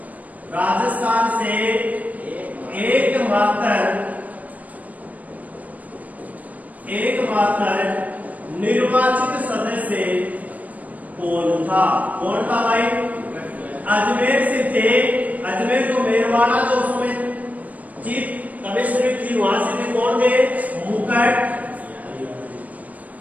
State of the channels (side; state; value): left; late; 0.073 ms